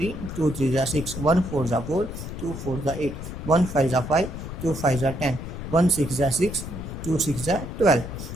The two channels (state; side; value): noise; left; rumble, 8 dB below the sound